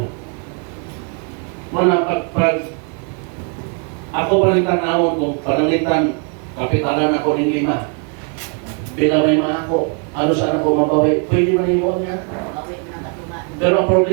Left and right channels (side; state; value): left; quieter; 37.9 dB